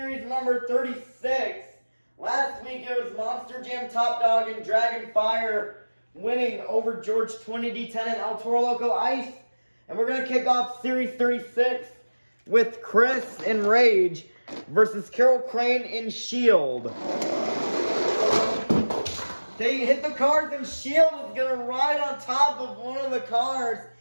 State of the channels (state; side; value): inverted; both; correlation -1.00